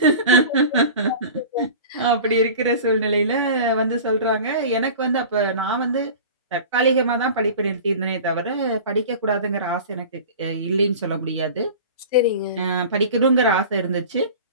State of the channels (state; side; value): inverted; both; correlation -0.38